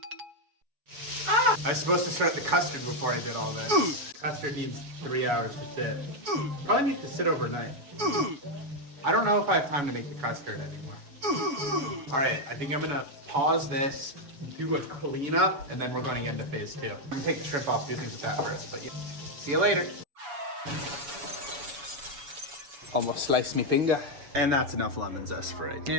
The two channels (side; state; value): left; late; 7.0 ms